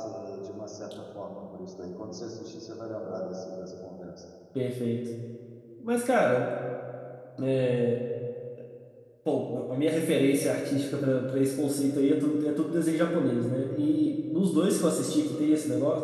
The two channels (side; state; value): both; identical; correlation 1.00